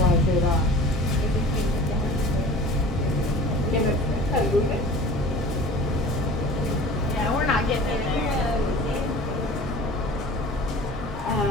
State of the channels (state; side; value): normal; both; correlation 0.42